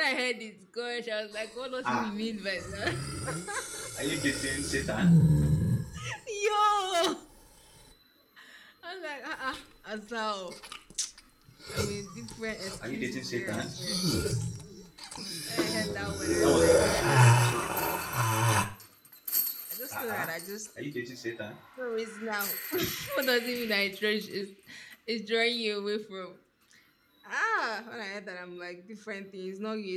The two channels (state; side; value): identical; both; correlation 1.00